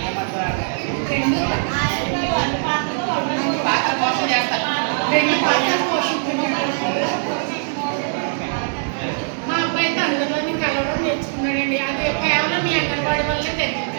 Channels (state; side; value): silent; left; 65 dB below the other